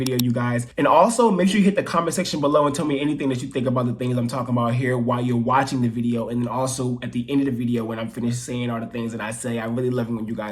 you guys. And also, make sure you hit the comment section below and tell me anything that you think about the things I'm talking about here while you're watching the video. And then also at the end of the video, when I'm finished saying all the things that I say, I really love it when you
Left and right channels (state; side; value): identical; both; correlation 1.00